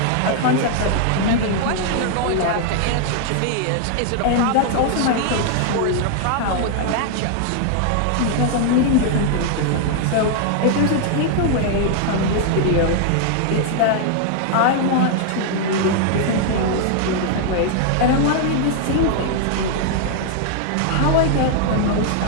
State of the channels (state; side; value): different; both; correlation 0.00